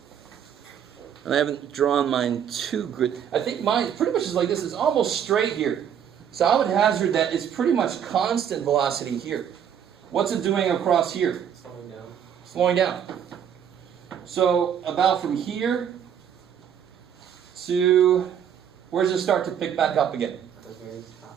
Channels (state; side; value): quieter; left; 8.7 dB